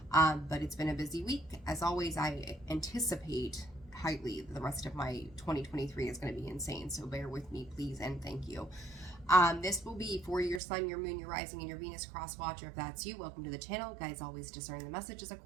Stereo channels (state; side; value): drops out; left; at 10.6 s